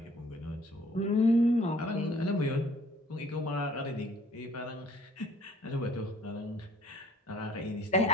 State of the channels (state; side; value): normal; both; correlation 0.57